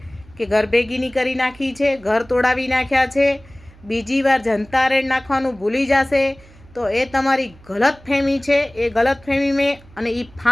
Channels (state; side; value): noise; right; hum, 24 dB below the sound